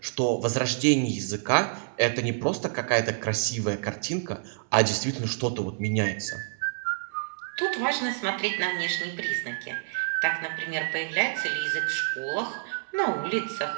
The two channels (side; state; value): left; silent; 59 dB below the other